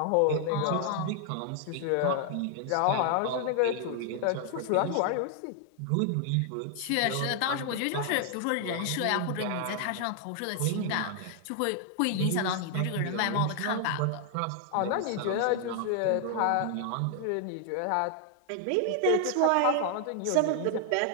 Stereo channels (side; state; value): both; different; correlation 0.00